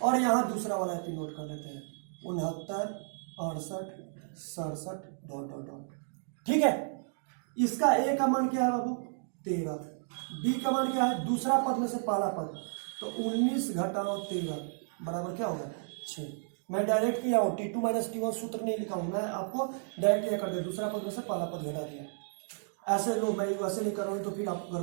और यहां दूसरा वाला एपी नोट कर लेते हैं 69, 68, 67 ... ठीक है, इसका ए का मान क्या है बाबू? 13। बी का मान क्या है? दूसरा पद में से पहला पद, तो 19 घटाओ 13 बराबर क्या होगा? 6। मैं डायरेक्ट किया हूं, T2 - T1 सूत्र नहीं लिखा हूं, मैं आपको डायरेक्ट क्या कर दिया, दूसरा पद में से पहला पद घटा दिया। ऐसे लो, मैं वैसे नहीं कर रहा हूं तो फिर आप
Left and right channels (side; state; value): left; silent; digital silence